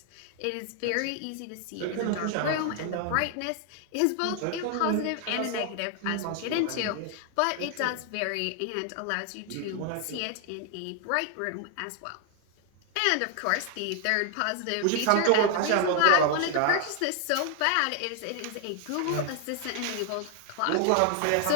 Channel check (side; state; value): both; different; correlation 0.00